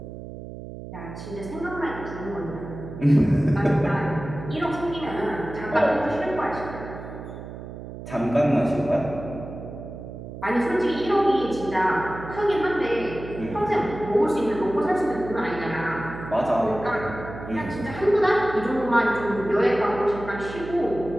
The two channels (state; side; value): noise; right; hum, 11 dB below the sound